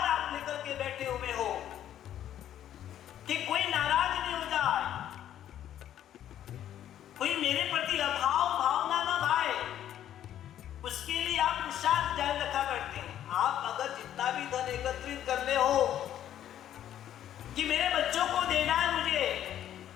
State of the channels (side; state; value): right; quieter; 11.1 dB